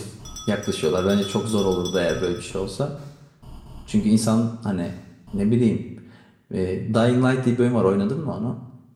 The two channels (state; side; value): identical; both; correlation 1.00